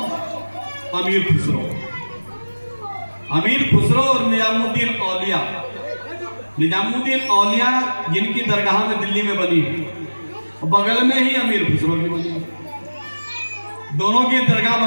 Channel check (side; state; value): both; inverted; correlation -1.00